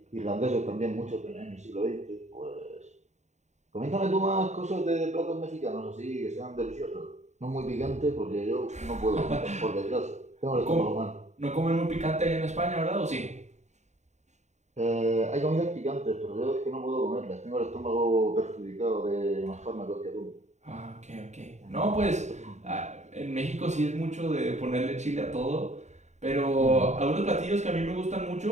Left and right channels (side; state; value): left; late; 0.34 ms